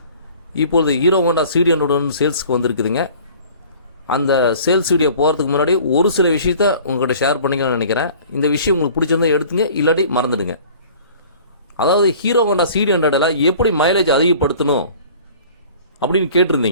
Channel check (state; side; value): inverted; both; correlation -0.48